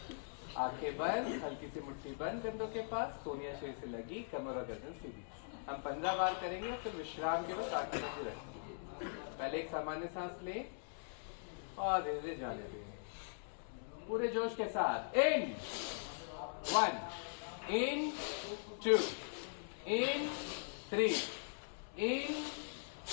आंखें बंद, हल्की सी मुट्ठी बंद कंधों के पास, सोनिया शेर से लगी, कमर और गर्दन सीधी। हम 15 बार करेंगे, फिर विश्राम के वक्त आंखें बंद रखेंगे। पहले एक सामान्य सांस ले और धीरे धीरे जाने देंगे पूरे जोश के साथ। इन 1, इन 2, इन 3, इन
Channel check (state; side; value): silent; right; digital silence